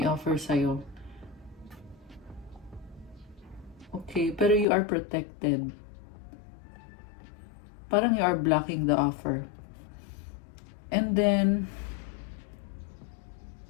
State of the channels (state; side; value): drops out; right; at 4.7 s